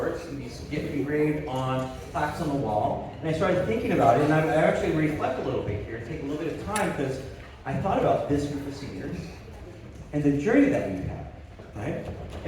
and these get engraved on plaques on the wall. And I started thinking about it, and I actually reflect a little bit here, take a little bit of time, because I thought about this group of seniors and the journey that we've had, right?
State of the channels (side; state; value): both; identical; correlation 1.00